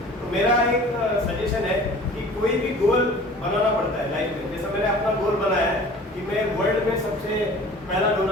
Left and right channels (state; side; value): normal; both; correlation 0.44